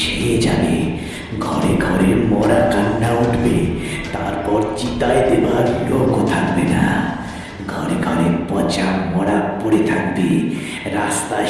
ছেয়ে যাবে, ঘরে ঘরে মরা কান্না উঠবে, তারপর চিতায় দেবার লোকও থাকবে না। ঘরে ঘরে পচা মরা পড়ে থাকবে, রাস্তায়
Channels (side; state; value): both; identical; correlation 1.00